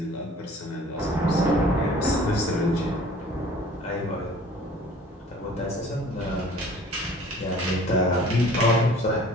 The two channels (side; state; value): both; normal; correlation 0.50